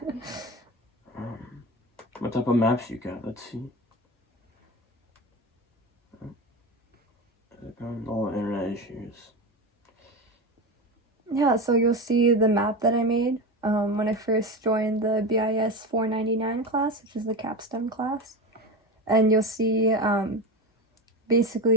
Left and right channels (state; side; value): normal; both; correlation 0.22